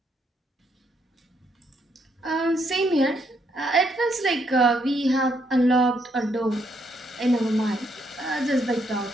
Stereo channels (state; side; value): normal; both; correlation 0.74